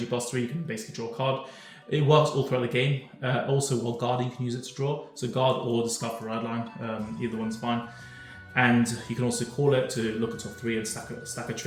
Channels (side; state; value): both; identical; correlation 1.00